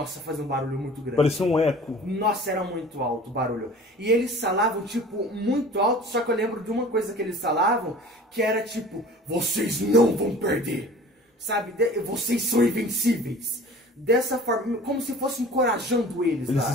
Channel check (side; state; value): both; normal; correlation 0.43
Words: fazia um barulho muito grande. Parecia um eco. Nossa, era muito alto o barulho. E eles falavam, tipo, muito alto, só que eu lembro de uma coisa que eles falavam, que era tipo, vocês não vão perder. Sabe? Vocês são invencíveis. Dessa forma, como se fosse encorajando eles. Eles